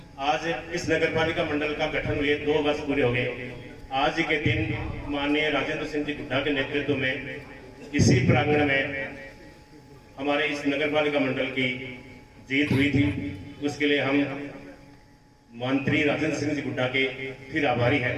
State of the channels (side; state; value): both; identical; correlation 1.00